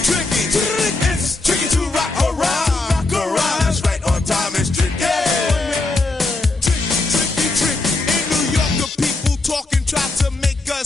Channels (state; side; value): quieter; right; 3.2 dB